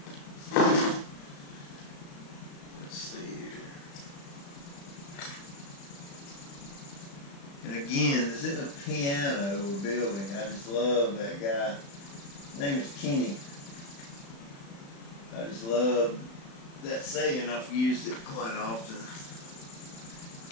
Let's see here. And again, this isn't a piano we're building. I just love that guy. His name is Kenny. I just love that saying. I've used it quite often.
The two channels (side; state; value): right; late; 35 ms